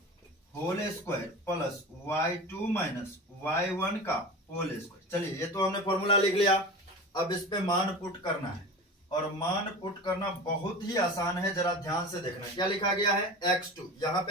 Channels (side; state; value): both; normal; correlation 0.32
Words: whole square plus y2 minus y1 का होल स्क्वायर। चलिए ये तो हमने फॉर्मूला लिख लिया, अब इस पे मान पुट करना है, और मान पुट करना बहुत ही आसान है, जरा ध्यान से देखना। क्या लिखा गया है x2, यहाँ